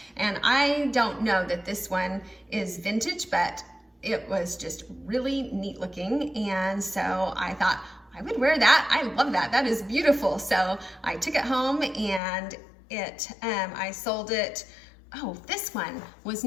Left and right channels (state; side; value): drops out; right; at 12.2 s